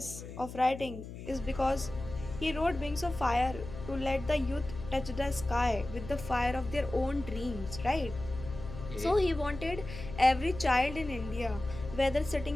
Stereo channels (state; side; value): noise; left; hum, 11 dB below the sound